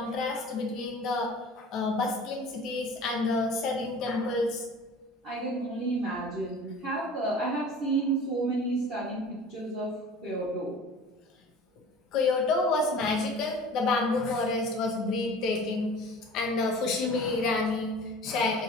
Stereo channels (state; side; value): normal; both; correlation 0.42